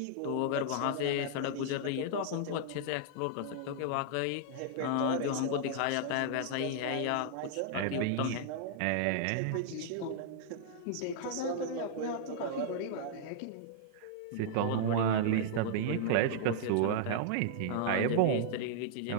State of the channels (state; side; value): different; both; correlation -0.01